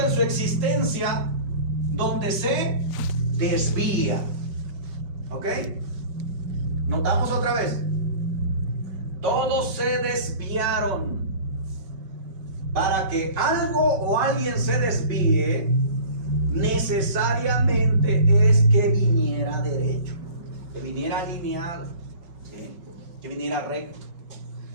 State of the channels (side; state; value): left; late; 5.3 ms